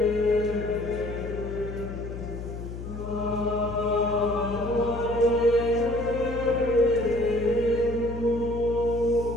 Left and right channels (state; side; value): noise; left; hum, 9 dB below the sound